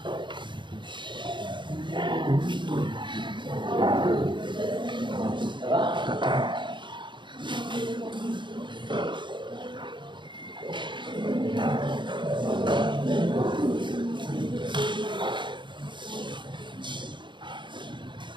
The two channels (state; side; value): late; left; 0.23 ms